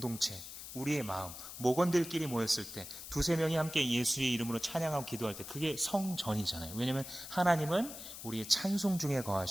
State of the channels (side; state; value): left; noise; hiss, 11 dB below the sound